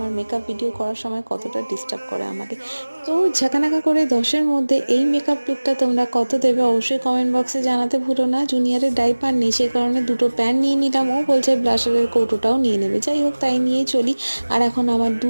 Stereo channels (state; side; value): inverted; both; correlation -1.00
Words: মেকআপ ভিডিও করার সময় কতটা ডিস্টার্ব করে আমাকে। তো ঝাঁকানাকা করে 10-এর মধ্যে এই মেকআপ লুকটা তোমরা কত দেবে অবশ্যই কমেন্ট বক্সে জানাতে ভুলো না। জুনিয়রের ডাইপার নেই, সে কারণে দুটো প্যান নিয়ে নিলাম, ও বলছে ব্লাশারের কৌটোটাও নিয়ে নেবে। যাই হোক, তাই নিয়েই চলি। আর এখন আমার